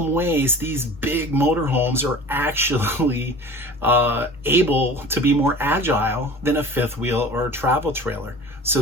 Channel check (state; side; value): normal; both; correlation 0.41